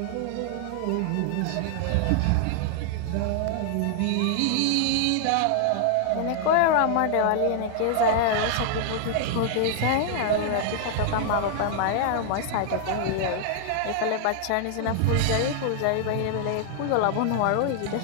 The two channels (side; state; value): both; different; correlation 0.00